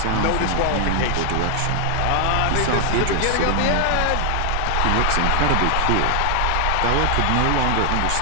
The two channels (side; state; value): both; different; correlation 0.00